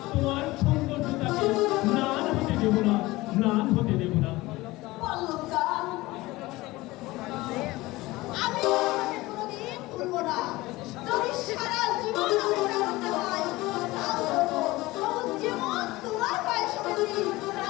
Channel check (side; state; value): right; quieter; 19.8 dB